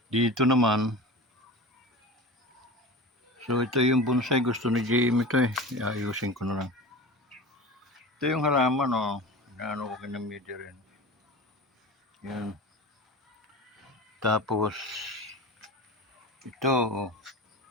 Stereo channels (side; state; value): both; normal; correlation 0.32